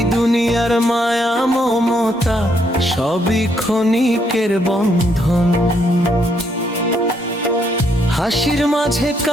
দুনিয়ার মায়া মমতা সবই ক্ষণিকের বন্ধন। হাসির মাঝে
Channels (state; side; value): normal; both; correlation 0.73